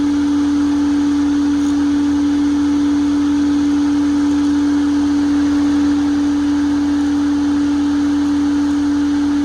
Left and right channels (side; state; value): both; identical; correlation 1.00